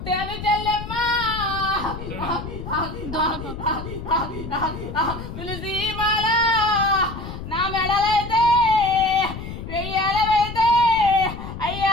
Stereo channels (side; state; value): left; noise; rumble, 9 dB below the sound